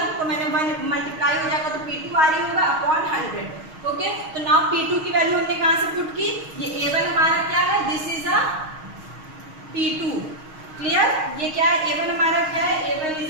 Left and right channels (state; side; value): late; left; 6.4 ms